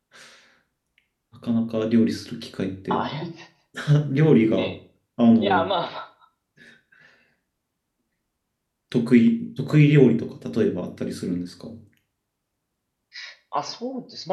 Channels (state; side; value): identical; both; correlation 1.00